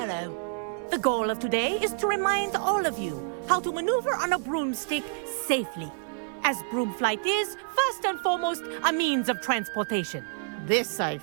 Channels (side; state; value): left; silent; 59 dB below the other